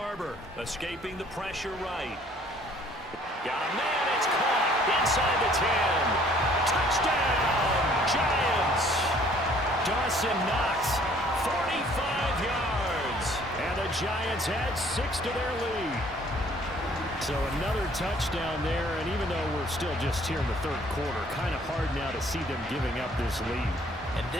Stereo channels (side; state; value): both; normal; correlation 0.58